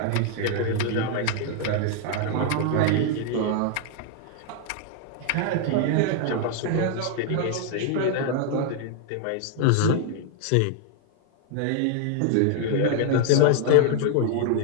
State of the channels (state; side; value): different; both; correlation 0.00